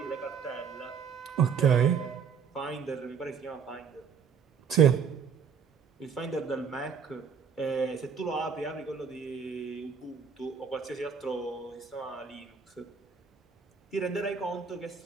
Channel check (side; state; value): left; quieter; 6.5 dB